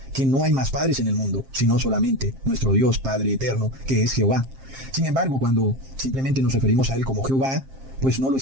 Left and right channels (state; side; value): late; left; 7.5 ms